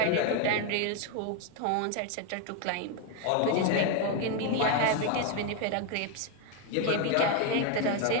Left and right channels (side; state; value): both; different; correlation 0.01